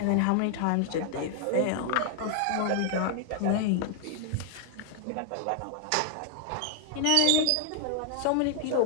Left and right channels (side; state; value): both; different; correlation 0.00